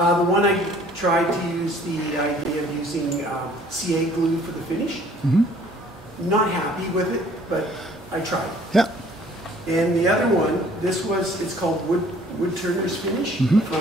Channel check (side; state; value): both; normal; correlation 0.56